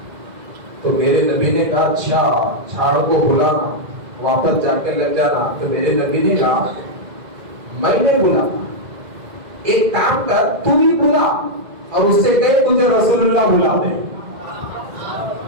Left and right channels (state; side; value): late; left; 2.0 ms